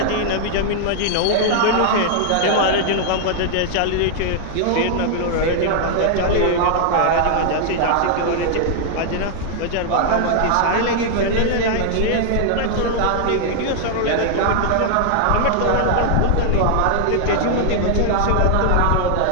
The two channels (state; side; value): different; both; correlation 0.00